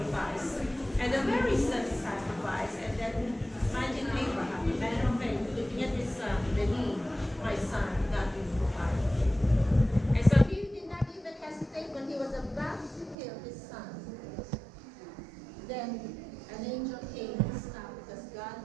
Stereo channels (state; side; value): drops out; left; at 13.2 s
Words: And a very simple sacrifice. And then imagine Abraham, the man of faith, looking at his son, the need, my son, God will provide. And so he did not even hesitate when he was about to kill his son. Then an angel came and stopped because God